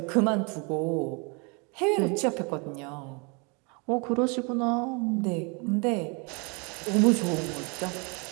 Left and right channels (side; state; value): left; quieter; 32.1 dB